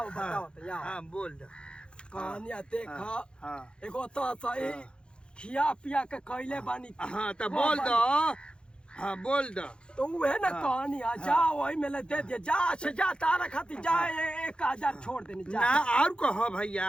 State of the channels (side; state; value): right; late; 0.053 ms